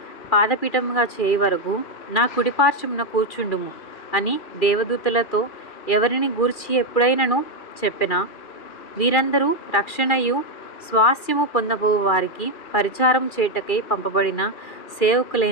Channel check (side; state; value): right; late; 2.4 ms